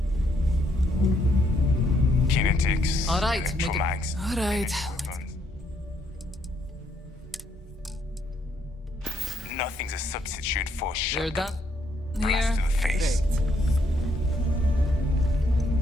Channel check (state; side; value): normal; both; correlation 0.72